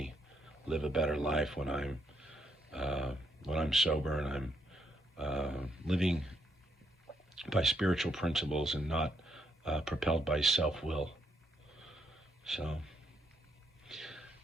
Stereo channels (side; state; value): both; normal; correlation 0.75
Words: live a better life when I'm sober and I'm living by spiritual principles and not propelled by self-will. So